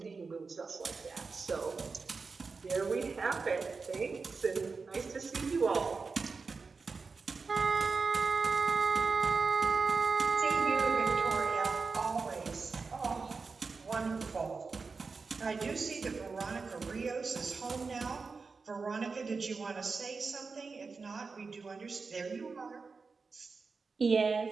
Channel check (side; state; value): left; quieter; 4.5 dB